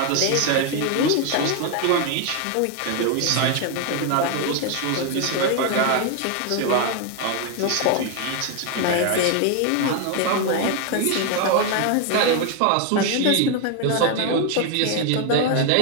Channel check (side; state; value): both; different; correlation 0.01